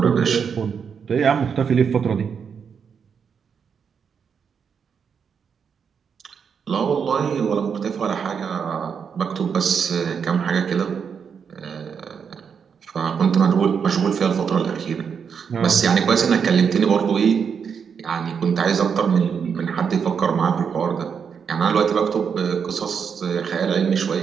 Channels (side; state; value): left; quieter; 6.7 dB